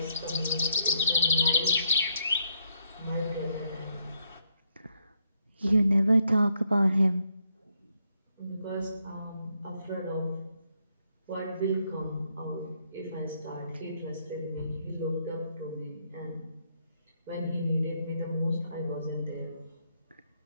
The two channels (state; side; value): inverted; both; correlation -0.76